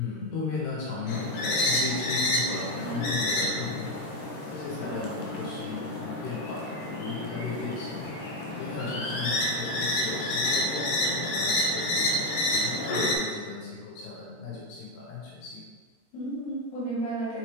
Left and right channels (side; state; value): right; late; 13 ms